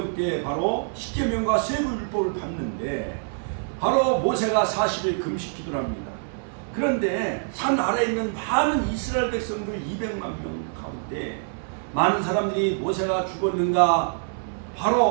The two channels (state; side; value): silent; left; 59 dB below the other